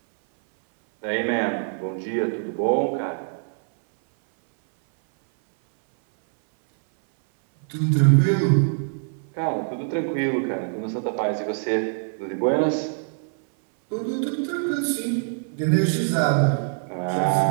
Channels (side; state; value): left; silent; 60 dB below the other